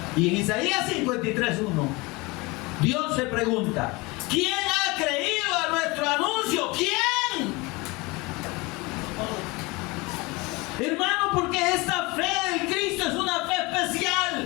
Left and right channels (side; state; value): right; quieter; 24.7 dB